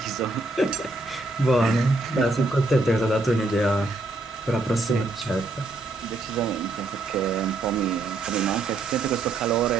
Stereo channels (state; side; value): quieter; left; 3.1 dB